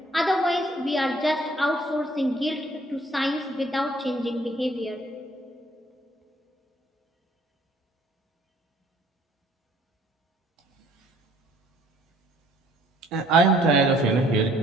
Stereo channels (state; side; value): normal; both; correlation 0.60